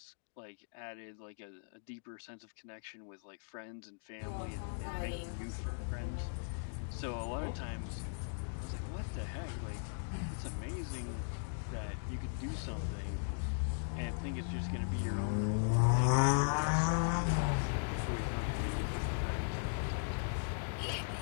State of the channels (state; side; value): silent; right; digital silence